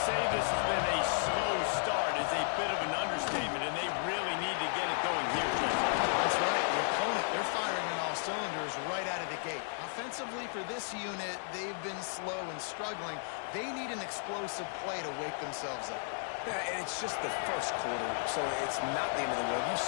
say this has been a slow start is a bit of an understatement, and they really need to get it going here, Jesse. That's right. The opponent, they're firing on all cylinders right out of the gate. Offensively for this unit, they've been slow and struggling. They need an explosive play to wake themselves up. Yeah, and it's just the first quarter, so it's not the end of the world. You've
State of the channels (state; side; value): silent; right; digital silence